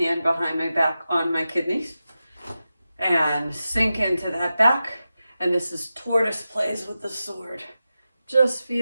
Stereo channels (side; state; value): both; inverted; correlation -0.92